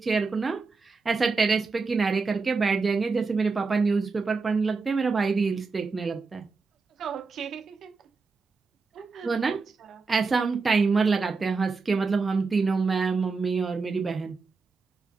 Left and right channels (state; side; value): quieter; left; 4.4 dB